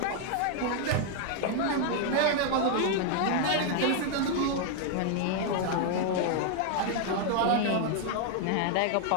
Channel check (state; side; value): different; both; correlation 0.00